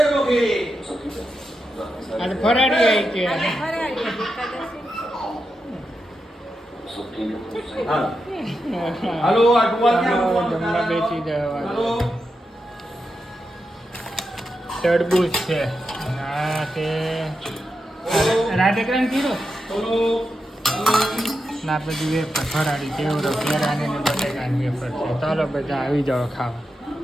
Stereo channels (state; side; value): normal; both; correlation 0.87